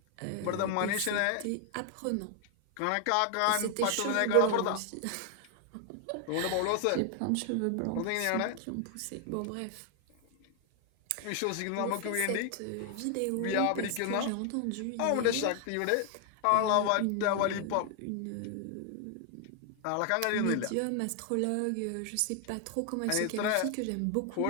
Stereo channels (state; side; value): different; both; correlation 0.00